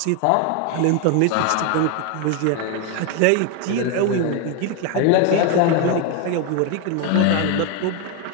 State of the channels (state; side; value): different; both; correlation 0.01